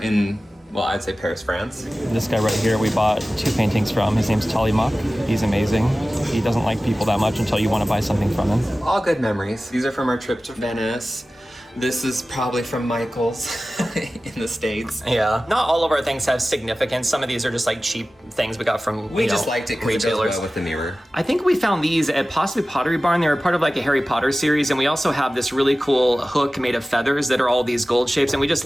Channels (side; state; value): both; normal; correlation 0.96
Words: in, well, I'd say Paris, France. This guy right here we bought 2 paintings from. His name's Tallymuck. He's amazing. He doesn't like people that much until you want to buy something from him. All good memories. These are from our trip to Venice. This is probably from Michael's in the States. Yeah. Not all of our things have significance. Some of these are just like cheap things we got from We just liked it because it goes well with the mirror. I think we found these at possibly Pottery Barn. They were part of like a Harry Potter series, and we also have this really cool hook made of feathers that are all these gold shapes, and we just